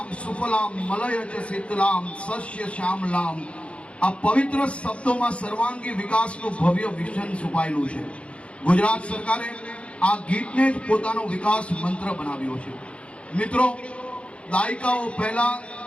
સુફલામ મલયજ શીતલામ સસ્ય શ્યામલામ, આ પવિત્ર શબ્દોમાં સર્વાંગી વિકાસનું ભવ્ય વિઝન છુપાયેલું છે. ગુજરાત સરકારે આ ગીતને જ પોતાનો વિકાસ મંત્ર બનાવ્યો છે. મિત્રો, દાયકાઓ પહેલા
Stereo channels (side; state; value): right; late; 0.061 ms